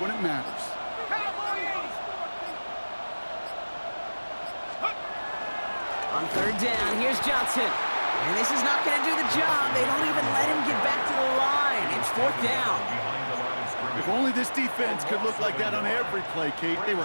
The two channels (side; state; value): both; inverted; correlation -1.00